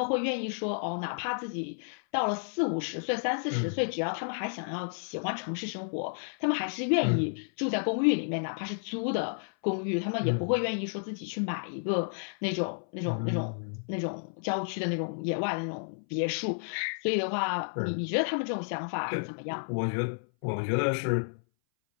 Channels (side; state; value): right; silent; 57 dB below the other